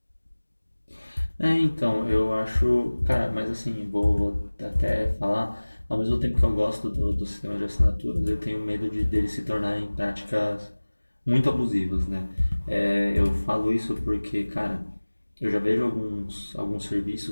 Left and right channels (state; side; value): inverted; both; correlation -1.00